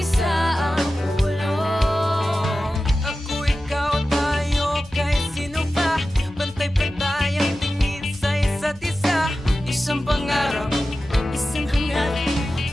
ang ulong. Ako, ikaw, tayo, kahit sino pa. Pantay-pantay ang tingin sa isa't isa. Isang pangarap, isang hangarin.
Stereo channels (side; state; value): both; normal; correlation 0.94